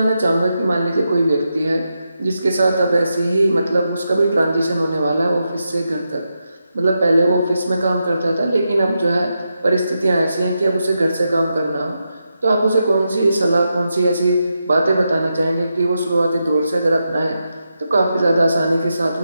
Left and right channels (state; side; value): inverted; both; correlation -0.86